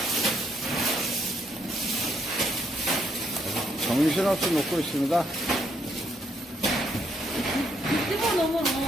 정신없이 먹고 있습니다. 집어넣으면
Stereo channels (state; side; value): normal; both; correlation 0.72